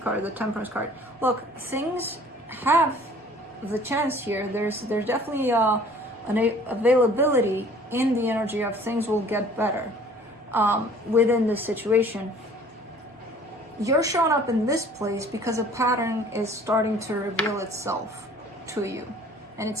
card, the Temperance card. Look, things have the chance here. There's definitely an availability in the energy of things will get better within this situation. you're showing up in this place because a pattern is starting to reveal itself to you. And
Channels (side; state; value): both; normal; correlation 0.52